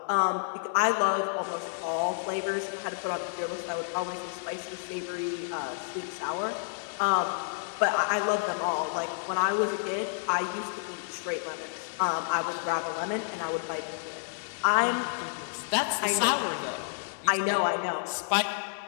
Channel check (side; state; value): right; silent; 58 dB below the other